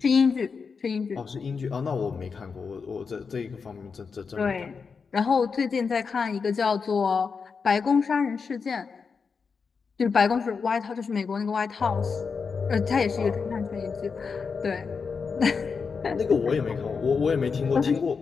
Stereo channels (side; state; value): right; quieter; 5.4 dB